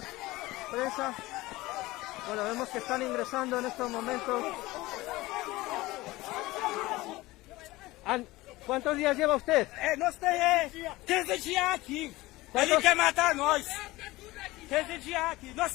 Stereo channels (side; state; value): right; quieter; 19.4 dB